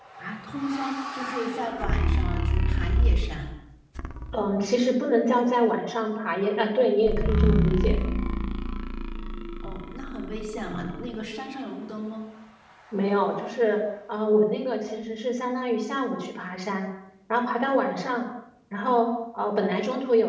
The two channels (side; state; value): both; identical; correlation 1.00